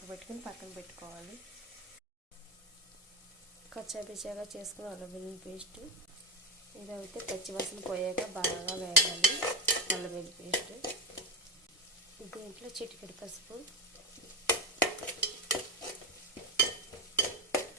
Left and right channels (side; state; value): both; normal; correlation 0.13